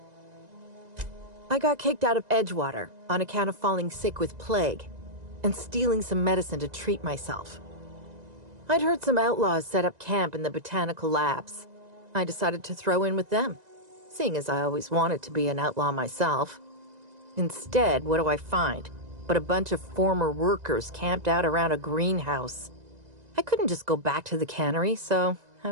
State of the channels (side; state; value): left; late; 1.9 ms